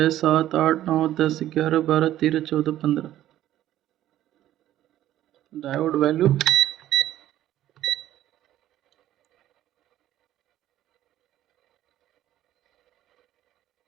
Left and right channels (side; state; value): left; quieter; 13.1 dB